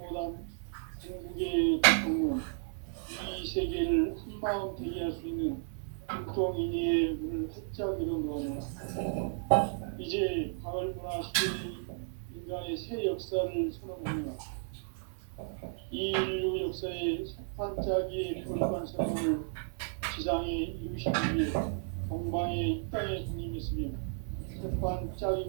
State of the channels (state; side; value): silent; left; 55 dB below the other